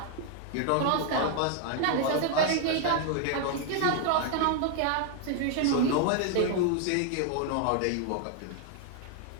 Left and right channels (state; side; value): different; both; correlation 0.00